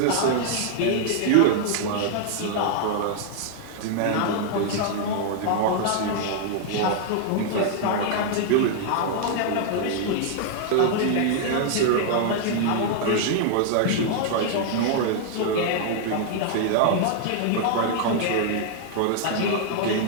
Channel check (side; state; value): both; different; correlation 0.00